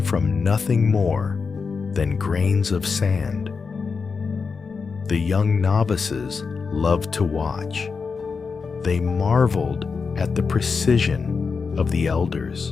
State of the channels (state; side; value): quieter; right; 5.1 dB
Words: nothing more than grains of sand. The young novices loved to watch. They marveled at the precision of the